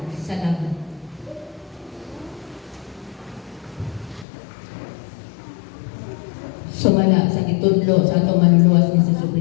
Salamat. Sumala sa gitudlo sa atong manluwas ni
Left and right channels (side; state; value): right; drops out; at 4.2 s